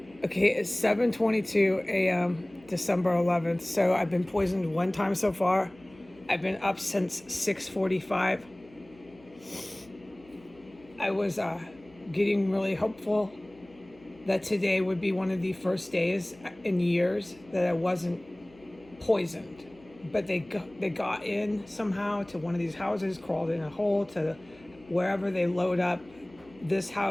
Okay, it's 7:22 a.m. December 11th. So I've been poisoned one time so far. I've been up since 6:45. I was getting really hopeful that today would be one of the first days in years that I wasn't poisoned. But they got in somehow to one of these houses, crawled in a hole to wherever they load up this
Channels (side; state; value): left; noise; hum, 26 dB below the sound